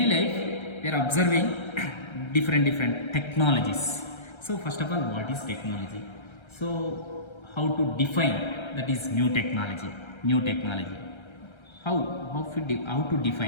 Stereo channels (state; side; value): late; right; 1.3 ms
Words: life we are observing different technologies. So first of all, what is technology? So how to define that is new technology? How to